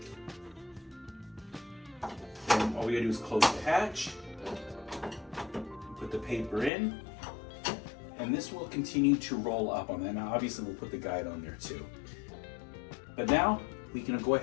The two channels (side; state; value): right; drops out; at 6.7 s